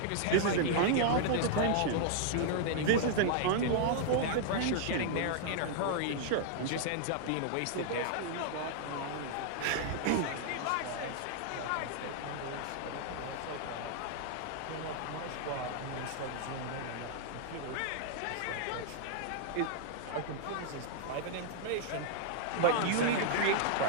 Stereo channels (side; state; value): both; different; correlation -0.01